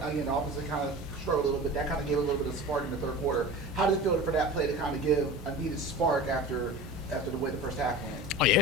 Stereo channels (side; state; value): both; normal; correlation 0.34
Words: kind of struggled a little bit. That kind of gave a little bit of spark in the third quarter. How did it feel for that play to kind of give a needed spark after the way the first half went? Oh yeah,